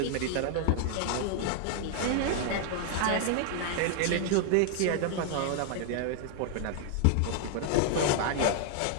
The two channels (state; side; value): different; both; correlation 0.00